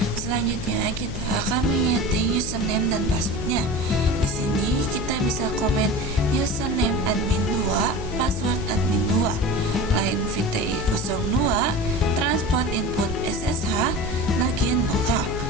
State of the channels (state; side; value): noise; left; hum, 8 dB below the sound